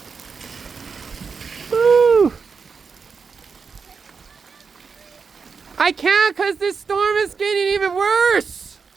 Woo! I can't because this storm is getting even worse.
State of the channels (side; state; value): left; quieter; 5.4 dB